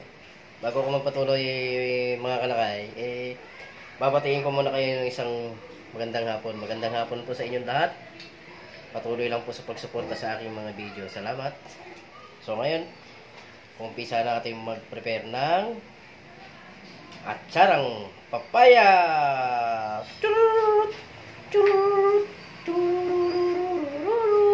Bago ko magpatuloy mga kalakay, babatiin ko muna kayo ng isang magandang hapon. Magandang hapon po sa inyong lahat. Patuloy lang po sa pagsuporta sa aking mga video. Salamat. So ngayon, umpisa natin mag-prepare ng atsarang papaya.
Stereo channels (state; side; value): identical; both; correlation 1.00